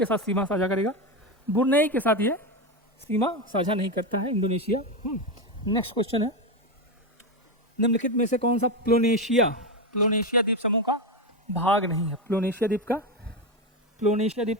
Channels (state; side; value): normal; both; correlation 0.13